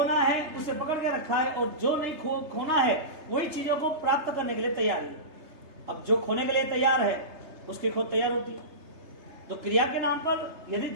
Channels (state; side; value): late; left; 3.3 ms